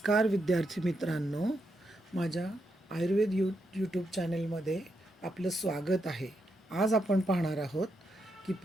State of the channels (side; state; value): both; normal; correlation 0.82